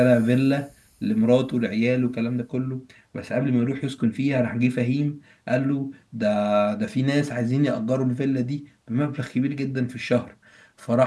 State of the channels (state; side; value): identical; both; correlation 1.00